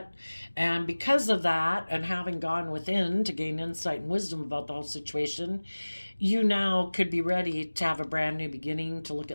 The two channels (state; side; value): inverted; both; correlation -1.00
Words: And because of that, and having gone within to gain insight and wisdom about the whole situation, you now could be ready to have a brand new beginning, to look